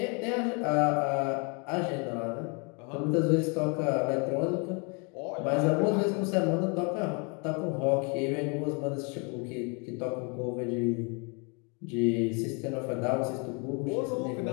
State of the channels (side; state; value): right; quieter; 34.3 dB